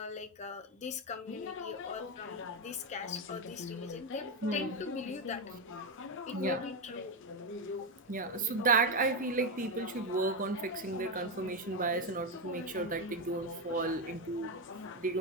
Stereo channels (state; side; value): normal; both; correlation 0.08